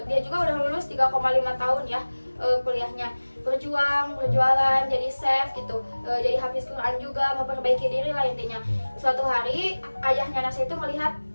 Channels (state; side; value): inverted; both; correlation -1.00